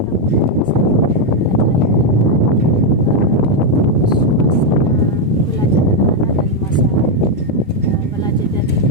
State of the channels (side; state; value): both; normal; correlation 0.02